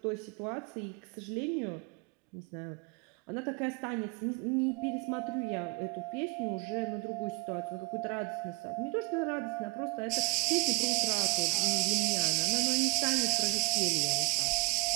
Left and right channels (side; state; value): left; quieter; 27.7 dB